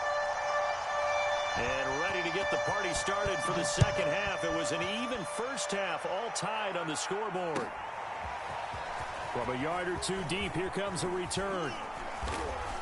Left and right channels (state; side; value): identical; both; correlation 1.00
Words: And ready to get the party started for the second half. It was an even first half, all tied on the scoreboard. From a yard or two deep, here comes a return.